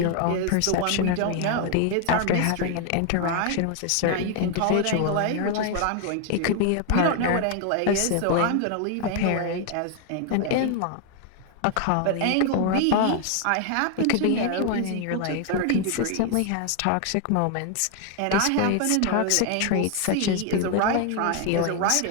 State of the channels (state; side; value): different; both; correlation 0.00